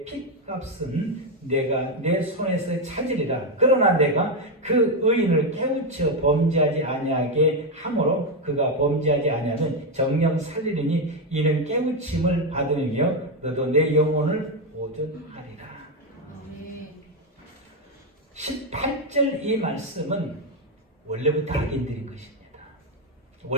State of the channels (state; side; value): normal; both; correlation 0.07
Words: 핏값은 내가 내 손에서 찾으리라. 그러나 내가 그 의인을 깨우쳐 범죄하지 아니하게 함으로 그가 범죄하지 아니하면 정령 살리리니 이는 깨우침을 받으며 너도 내 영혼을 보존하리라. 18절 이 말씀은 원래부터 악인들인 것입니다.